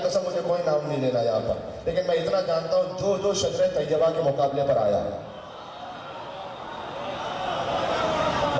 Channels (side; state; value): both; identical; correlation 1.00